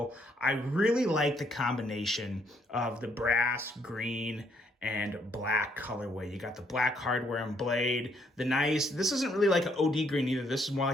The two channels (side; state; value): both; normal; correlation 0.70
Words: I really like the combination of the brass, green, and black colorway. You got the black hardware and blade. This isn't really like an OD green either. This is more